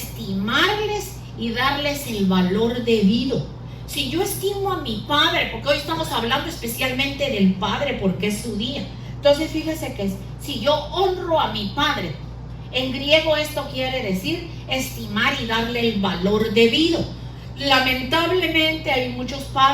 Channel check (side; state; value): both; identical; correlation 1.00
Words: y darles el valor debido. Si yo estimo a mi padre, porque hoy estamos hablando especialmente del padre porque es su día. Entonces fíjese que si yo honro a mi padre, en griego esto quiere decir estimar y darle el valor debido. Lamentablemente hay muchos